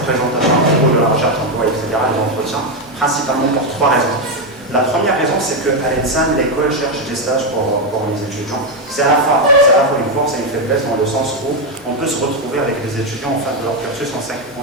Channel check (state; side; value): normal; both; correlation 0.05